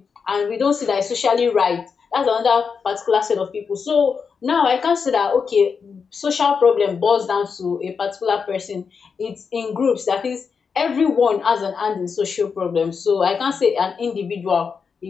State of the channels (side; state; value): right; quieter; 5.8 dB